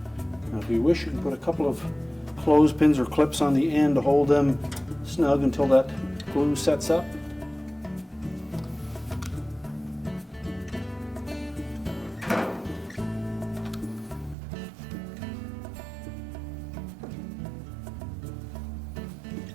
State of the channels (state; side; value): drops out; left; at 14.4 s